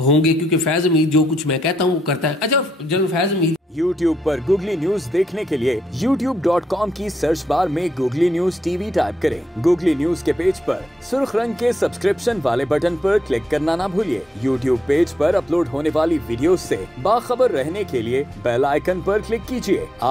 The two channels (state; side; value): normal; both; correlation 0.80